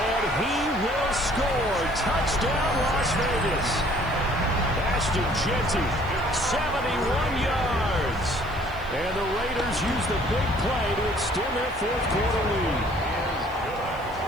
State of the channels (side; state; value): right; noise; hiss, 26 dB below the sound